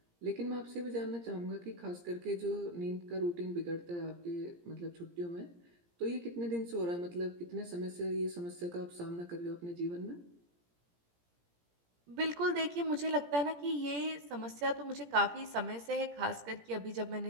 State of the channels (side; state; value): left; late; 17 ms